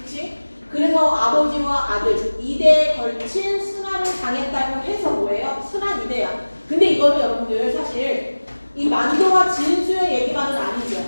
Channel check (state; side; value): inverted; both; correlation -1.00